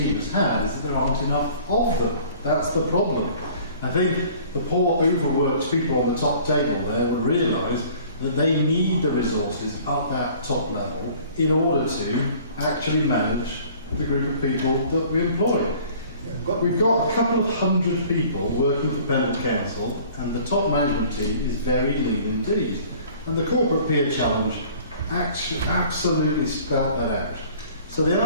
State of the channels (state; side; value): inverted; both; correlation -0.51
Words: has had is that there aren't enough of them. That's the problem. I think the poor overworked people on the top table there will realise that they need the resources at that top level in order to actually manage the group of people that we employ. We've got a couple of hundred people working for Pendle Council, and the top management team is very lean indeed. And the corporate peer challenge actually absolutely spelled that out. So the